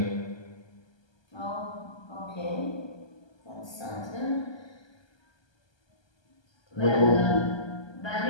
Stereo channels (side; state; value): right; late; 1.3 ms